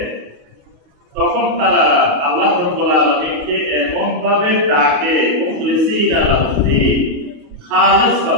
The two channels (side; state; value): left; late; 28 ms